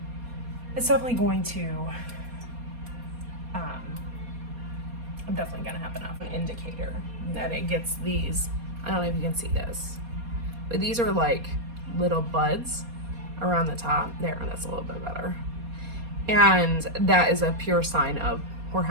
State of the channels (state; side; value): late; left; 4.2 ms